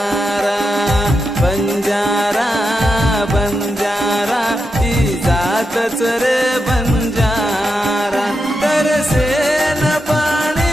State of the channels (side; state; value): both; normal; correlation 0.87